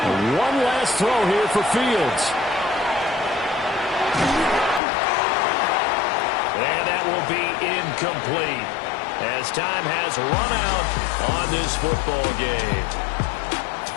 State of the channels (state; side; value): drops out; right; at 4.8 s